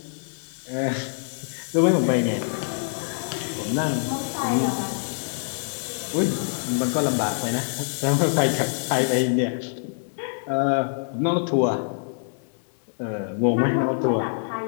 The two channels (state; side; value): silent; right; digital silence